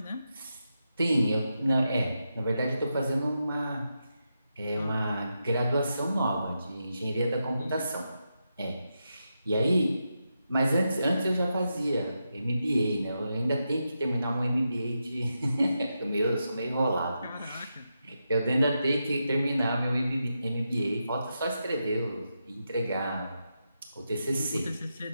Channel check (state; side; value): inverted; both; correlation -0.87